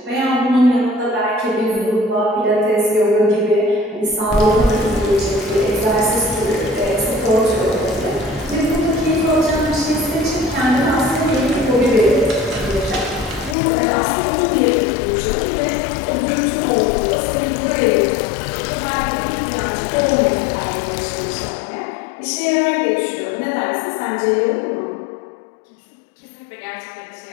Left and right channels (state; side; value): drops out; right; at 13.6 s